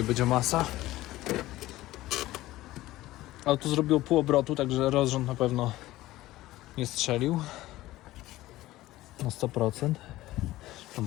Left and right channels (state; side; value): quieter; right; 16.7 dB